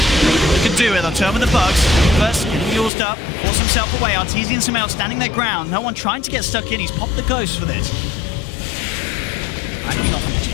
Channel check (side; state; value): right; drops out; at 2.9 s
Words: can do it, they'll turn with the bugs. First, getting used up, force himself away. Arteezy and Samael standing their ground. No one trying to get stuck in. He's popped the ghost for this. Backing off